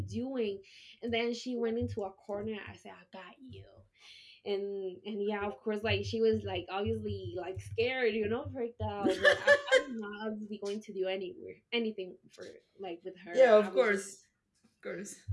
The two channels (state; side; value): identical; both; correlation 1.00